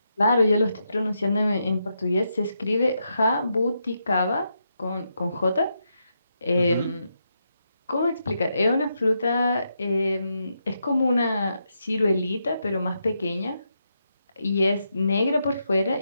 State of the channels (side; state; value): both; inverted; correlation -0.83